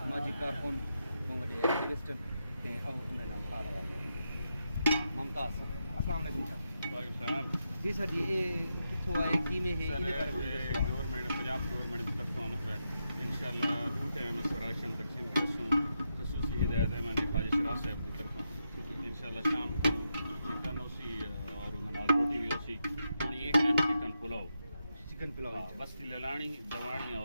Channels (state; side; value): inverted; both; correlation -0.85